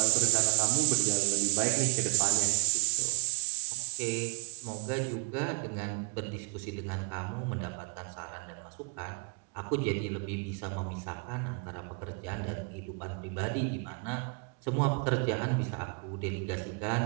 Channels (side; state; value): left; quieter; 37.5 dB